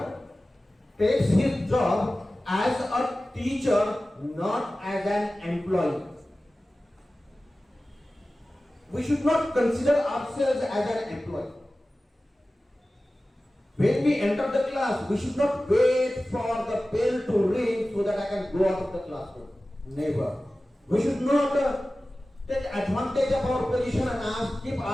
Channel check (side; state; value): both; normal; correlation 0.96